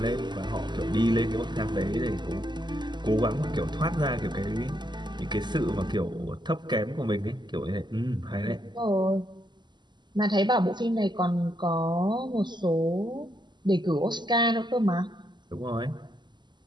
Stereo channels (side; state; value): left; late; 0.21 ms